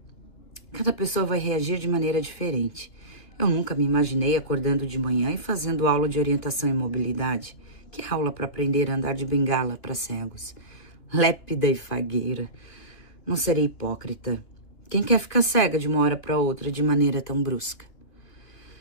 Cada pessoa vai reagir de maneira diferente. Eu nunca me imaginei acordando de manhã e fazendo aula de orientação e mobilidade. Que aula para aprender a andar de bengala para cegos? Lépida e fagueira. Não serei hipócrita. Quem quer ficar cega de uma hora para outra de maneira tão brusca?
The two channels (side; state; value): right; late; 2.4 ms